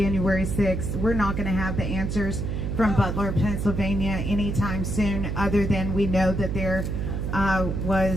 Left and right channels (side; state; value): right; noise; hum, 2 dB below the sound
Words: 6th. We're not going to have the answers from Butler, Pennsylvania anytime soon, other than we know that there